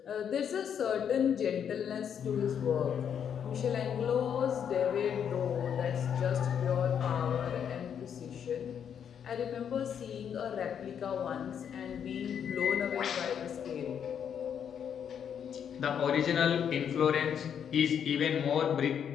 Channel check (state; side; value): quieter; right; 8.2 dB